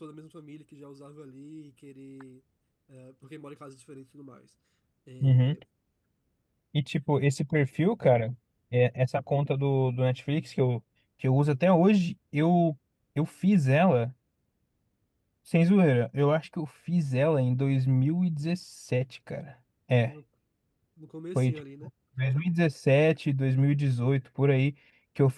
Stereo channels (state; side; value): identical; both; correlation 1.00